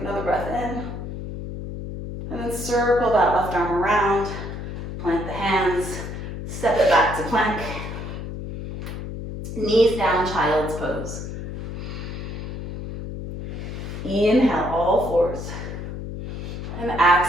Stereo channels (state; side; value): noise; left; hum, 7 dB below the sound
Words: another breath in. And then circle that left arm around. Plant the hands. Step it back to plank. Knees down, child's pose. Inhale, all fours. And